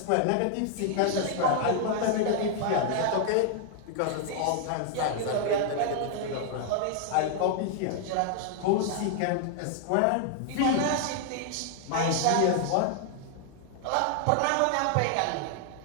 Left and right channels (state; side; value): different; both; correlation 0.00